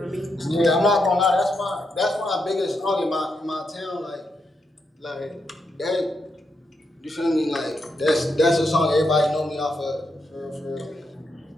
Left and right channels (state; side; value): normal; both; correlation 0.82